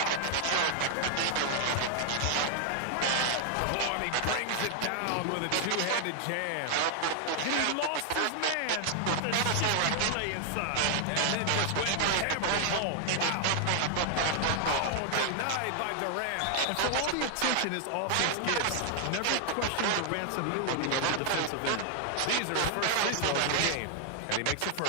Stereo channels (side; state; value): both; different; correlation 0.00